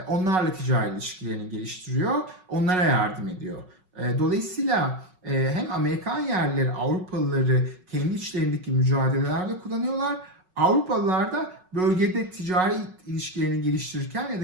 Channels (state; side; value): late; left; 5.4 ms